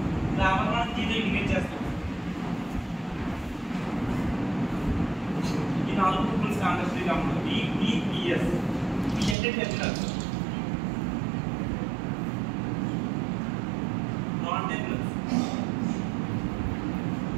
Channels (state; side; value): drops out; left; at 9.3 s